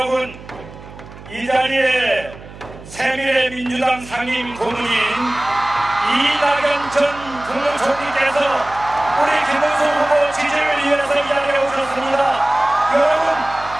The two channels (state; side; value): noise; right; hum, 17 dB below the sound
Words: 이 자리에 새미래민주당 상임 고문인 이낙연 전 국무총리께서 우리 김문수 후보 지지를 위해서 이 자리에 오셨습니다. 여러분,